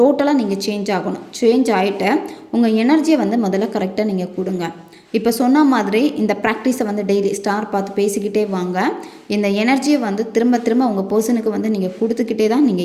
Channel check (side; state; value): both; identical; correlation 1.00